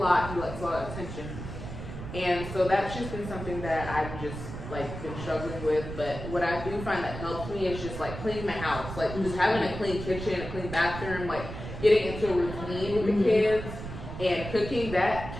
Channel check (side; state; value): right; noise; rumble, 9 dB below the sound